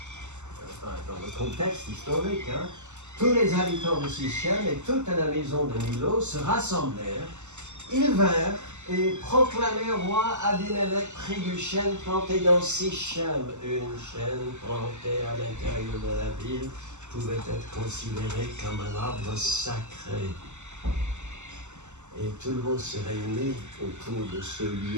le contexte historique, hein, tous les habitants de Sichem et toute la maison de Milo se rassemblèrent. Ils vinrent et proclamèrent roi Abimelech près du chêne planté dans Sichem. Une chaîne plantée à l'intérieur de la ville pouvait être considérée comme un arbre sacré. Et tout le monde se réunit autour de ce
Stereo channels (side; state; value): left; late; 0.83 ms